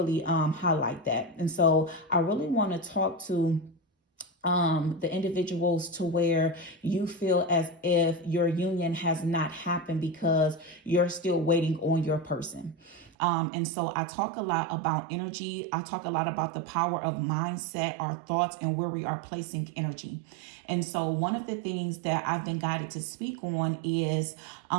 highlight that. And so I really want to talk to the individuals to where you feel as if your union has not happened because you're still waiting on your person. And so I talk a lot about energy. I talk a lot about the power of mindset, our thoughts, and where we are placing energy. And so one of the things that I've been guided to speak on is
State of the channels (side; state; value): left; drops out; at 13.1 s